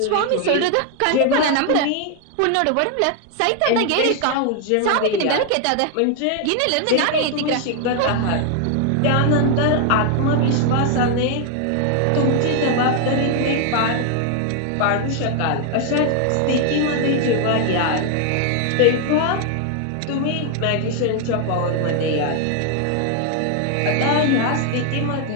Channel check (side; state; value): both; different; correlation 0.00